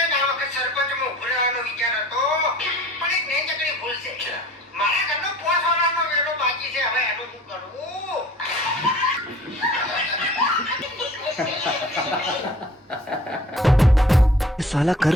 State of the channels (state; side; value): normal; both; correlation 0.48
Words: ને આ વખત સરપંચમાં ઉભો રહેવાનો વિચાર હતો પણ એક નહીં ચકડી ભૂલ છે. મારા ઘરનો પોસવાનો વેલો બાકી છે. હવે એનું શું કરવું? साला कर